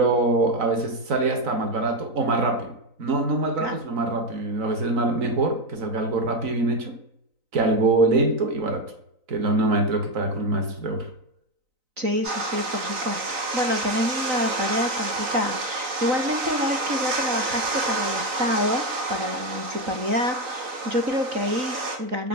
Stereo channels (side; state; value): left; late; 3.9 ms